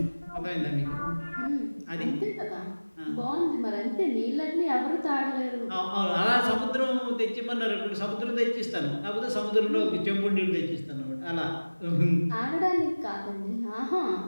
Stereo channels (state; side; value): inverted; both; correlation -1.00